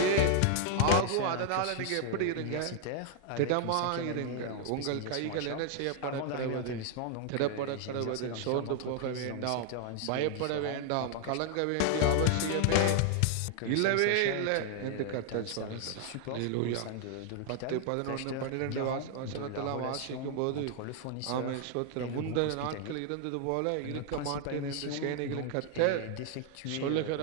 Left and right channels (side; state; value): both; different; correlation 0.00